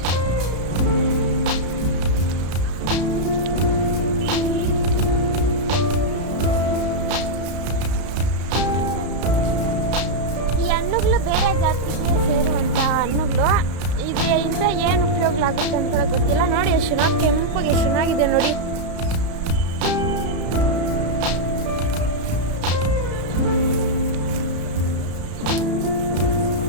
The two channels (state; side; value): late; left; 33 ms